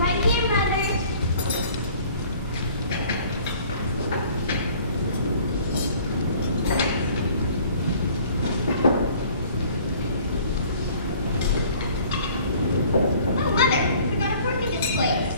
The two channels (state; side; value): inverted; both; correlation -0.52